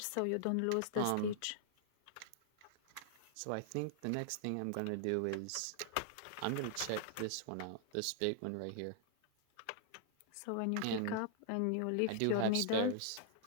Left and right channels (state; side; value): different; both; correlation -0.01